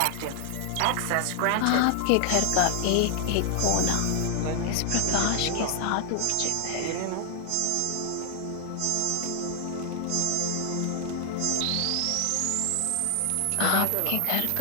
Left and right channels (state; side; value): different; both; correlation 0.00